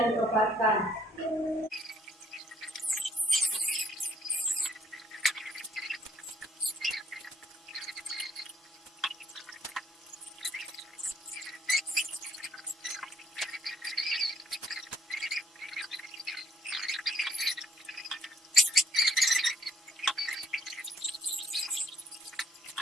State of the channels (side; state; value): both; normal; correlation 0.67